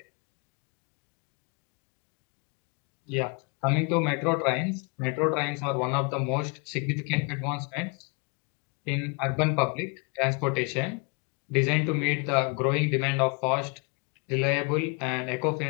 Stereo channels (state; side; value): quieter; right; 33.7 dB